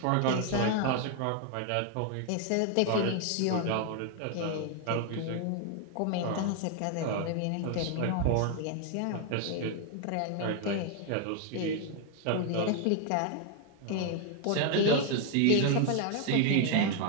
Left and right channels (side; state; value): both; different; correlation 0.01